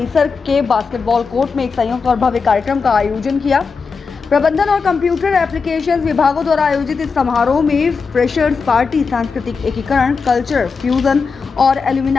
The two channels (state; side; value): quieter; right; 5.1 dB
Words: के बास्केटबॉल कोर्ट में एक संयुक्त और भव्य कार्यक्रम का आयोजन किया। प्रबंधन और कंप्यूटर एप्लीकेशंस विभागों द्वारा आयोजित इस समारोह में फ्रेशर्स पार्टी, सांस्कृतिक एकीकरण, कल्चर फ्यूजन और